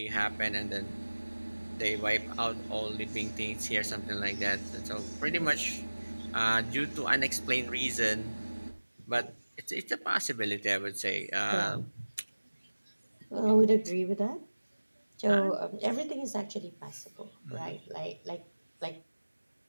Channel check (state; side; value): inverted; both; correlation -1.00